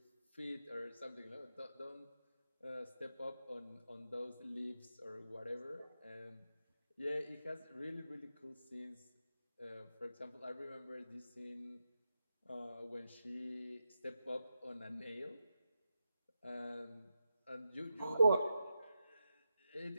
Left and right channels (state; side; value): inverted; both; correlation -0.88